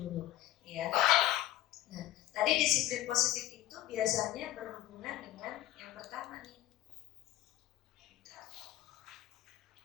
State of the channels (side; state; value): right; quieter; 14.5 dB